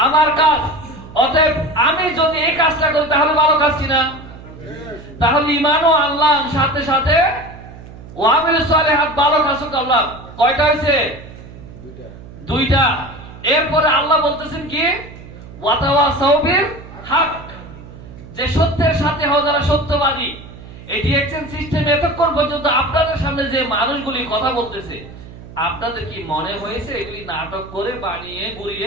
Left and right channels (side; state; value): right; noise; hum, 17 dB below the sound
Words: আমার কাজ। অতএব আমি যদি এই কাজটা করি তাহলে ভালো কাজ কিনা? তাহলে ঈমান ও আল্লাহ সাথে সাথে ওয়ামিল সালিহাত ভালো কাজ করলাম। কয়টা হয়েছে? দুইটা। এরপরে আল্লাহ বলতেছেন কি? ওয়াতাওয়াসাউ বিল হক, যে সত্যের সাথে হও যারা সত্যবাদী। এই ডিএক্সএন সিস্টেম এতক্ষণ পর্যন্ত আপনাদের সামনে যে মানুষগুলি কথা বলতেছে, আপনাদের কি মনে হয়েছে এগুলি নাটক করে বানিয়ে